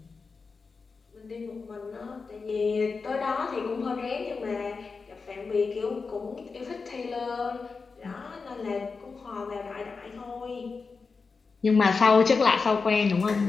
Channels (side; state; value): right; quieter; 4.7 dB